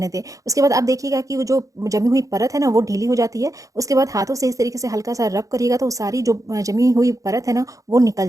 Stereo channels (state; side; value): late; left; 0.16 ms